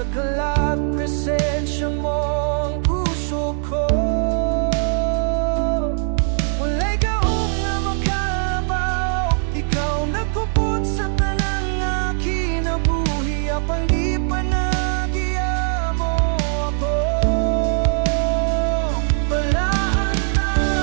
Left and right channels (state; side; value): silent; left; digital silence